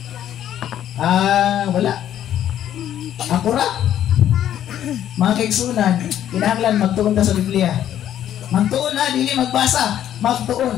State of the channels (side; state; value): right; quieter; 11.0 dB